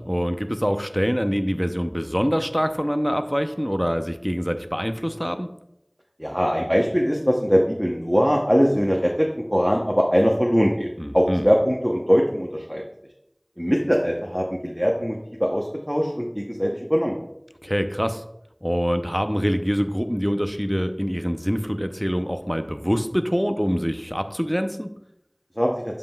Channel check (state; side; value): identical; both; correlation 1.00